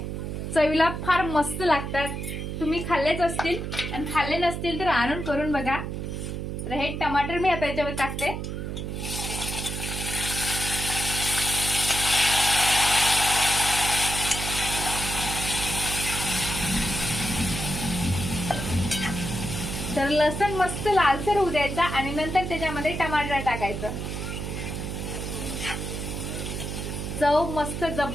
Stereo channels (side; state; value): right; noise; hum, 5 dB below the sound